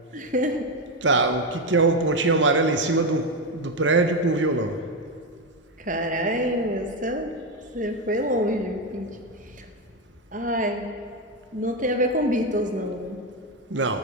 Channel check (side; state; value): both; normal; correlation 0.10